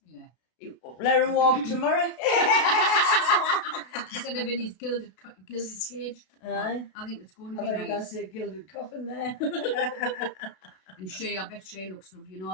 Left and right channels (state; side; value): late; right; 33 ms